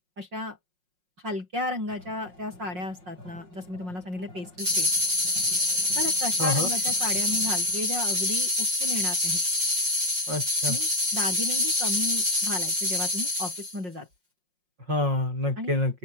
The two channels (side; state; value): left; late; 5.5 ms